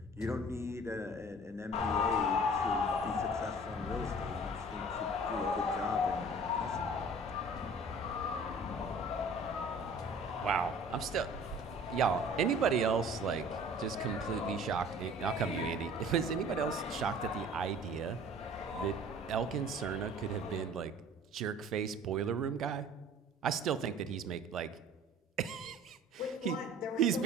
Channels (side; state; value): both; normal; correlation 0.47